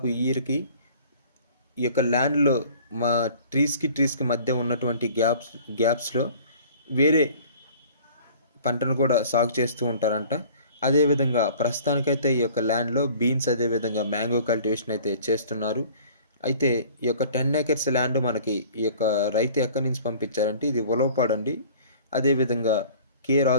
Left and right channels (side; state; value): both; inverted; correlation -0.49